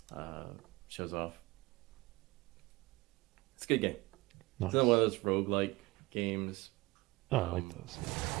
shows off. It's a good game. Nice. It's another one of those roguelike games. Oh, I like those.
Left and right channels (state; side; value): quieter; left; 21.8 dB